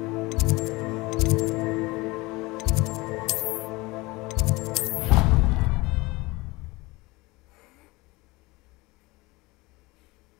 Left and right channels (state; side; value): quieter; right; 22.7 dB